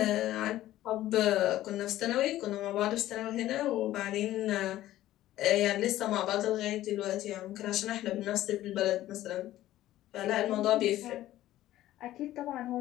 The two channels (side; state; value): right; quieter; 14.4 dB